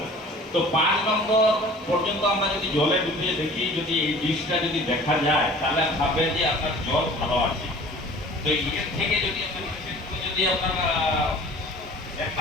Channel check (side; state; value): both; normal; correlation 0.46